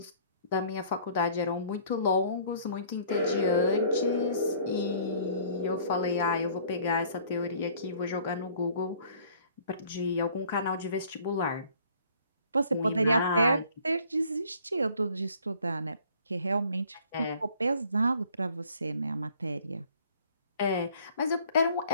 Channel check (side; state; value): both; inverted; correlation -0.56